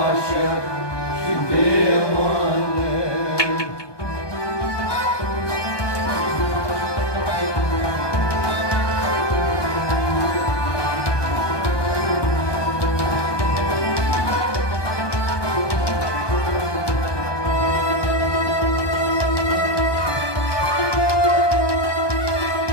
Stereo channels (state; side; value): late; right; 1.2 ms